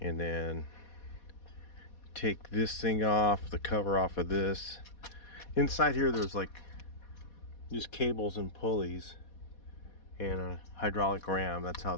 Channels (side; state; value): right; late; 4.2 ms